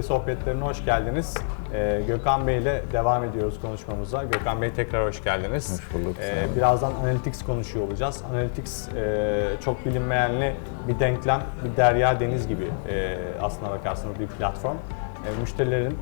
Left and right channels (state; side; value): silent; right; digital silence